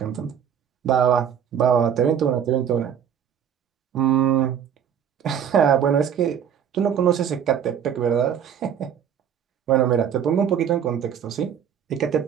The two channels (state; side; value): quieter; left; 8.5 dB